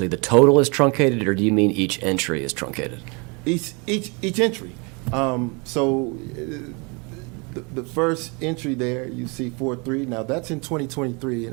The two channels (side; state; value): left; quieter; 31.0 dB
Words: the total is truncated, or do you mean each entry is truncated? Each entry. The first entry there, you see 4-3. Now, that's in 2023,